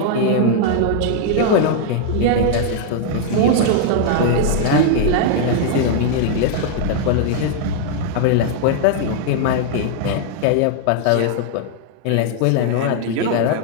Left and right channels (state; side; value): different; both; correlation 0.00